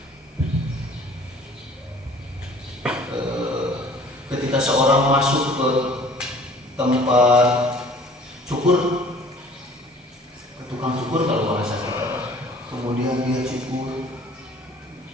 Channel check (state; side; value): normal; both; correlation 0.51